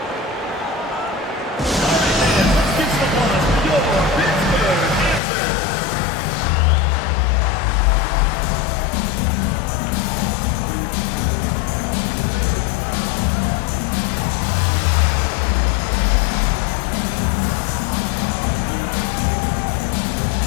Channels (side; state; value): right; drops out; at 5.2 s